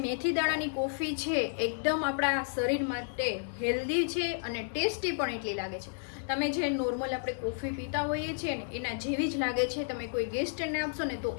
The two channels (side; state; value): right; silent; 57 dB below the other